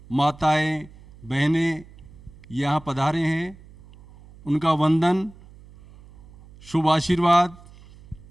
माताएं, बहनें यहाँ पधारे हैं, उनका वंदन, शुभ आशीर्वाद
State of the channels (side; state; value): right; noise; hum, 22 dB below the sound